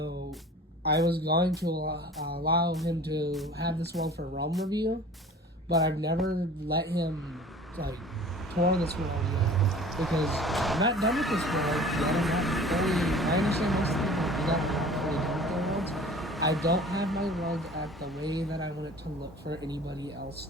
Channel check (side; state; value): both; normal; correlation 0.44